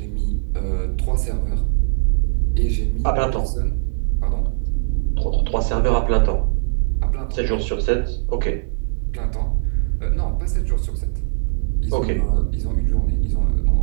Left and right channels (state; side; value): silent; left; digital silence